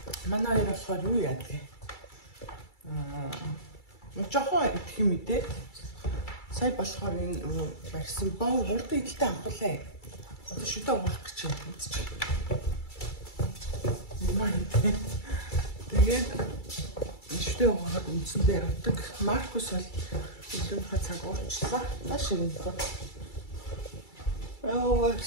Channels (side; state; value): right; late; 2.3 ms